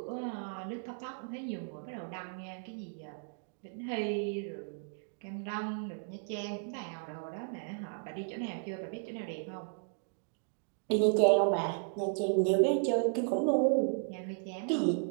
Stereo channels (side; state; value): left; silent; digital silence